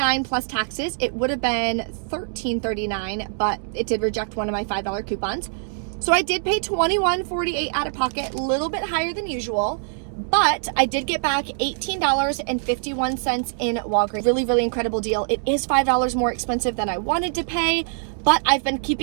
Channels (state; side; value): silent; left; 63 dB below the other